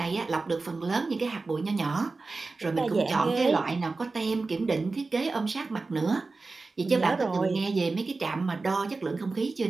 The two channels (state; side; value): quieter; left; 3.8 dB